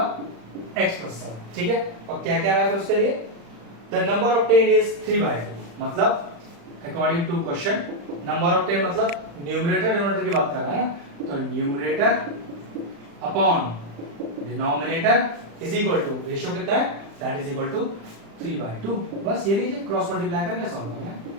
x प्लस 7, ठीक है। और क्या क्या रहा है फिर उसके लिए, द नंबर ऑब्टेन्ड इज 3/2। मतलब according to question number obtained मतलब न्यूमरेटर डिनोमिनेटर की बात कर रहा है ना, तो numerator upon denominator is equal to, ratio कितना है, दैट इज इक्वल टू 3/2। बस ये लीजिए क्रॉस मल्टीप्लाई करके सॉल्व करना है।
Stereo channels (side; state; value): left; late; 35 ms